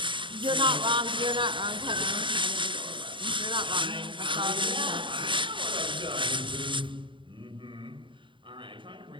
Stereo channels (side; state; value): left; late; 0.24 ms